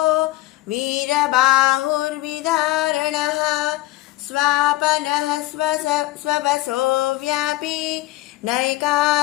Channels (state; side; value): quieter; right; 17.3 dB